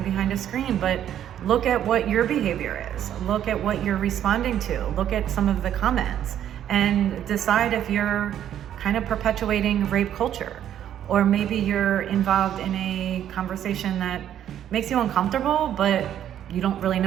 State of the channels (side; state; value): left; quieter; 10.5 dB